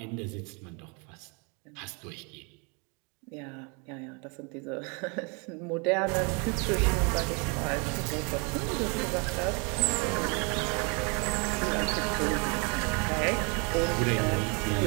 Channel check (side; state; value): left; quieter; 33.3 dB